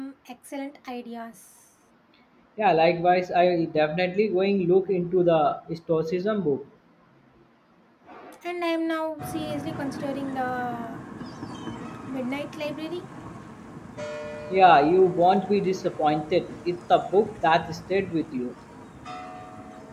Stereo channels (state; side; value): identical; both; correlation 1.00